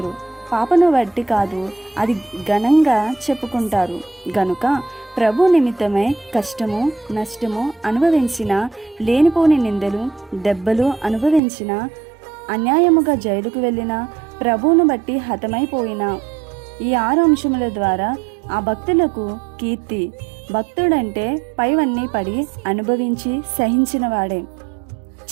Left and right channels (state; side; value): drops out; left; at 11.4 s